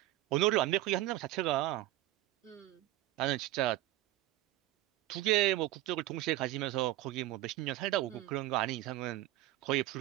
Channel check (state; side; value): quieter; left; 15.5 dB